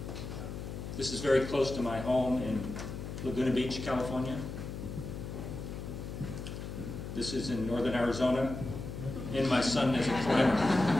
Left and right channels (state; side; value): noise; left; hum, 8 dB below the sound